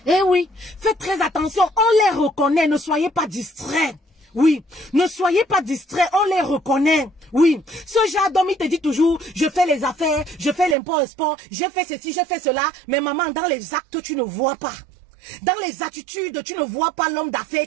Eh oui, faites très attention, on les reconnaît, ne soyez pas distraits. Oui, ne soyez pas distraits, on les reconnaît. Oui, ce genre d'homme, il te dit toujours, je fais les affaires, je fais l'import-export, j'ai fait ceci, j'ai fait cela. Mais maman, dans les actes, tu ne vois pas. Dans les attitudes, tu ne vois pas l'homme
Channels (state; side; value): drops out; left; at 10.8 s